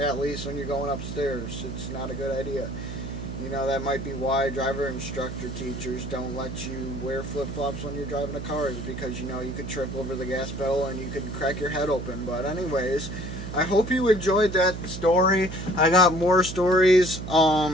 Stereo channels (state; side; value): noise; right; hum, 8 dB below the sound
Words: least when you're going upstairs. It's not a good idea. You know, that might be why driver instructor teachers don't let you wear flip-flops when you're driving a car, is because, you know, you could trip over the gas pedal and you could crack your head open. But anyways, I hope you enjoyed that story. I got more stories.